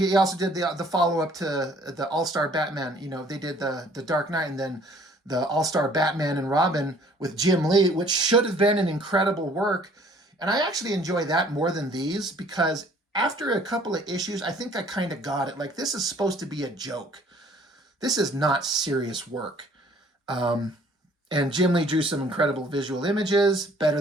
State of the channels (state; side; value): normal; both; correlation 0.56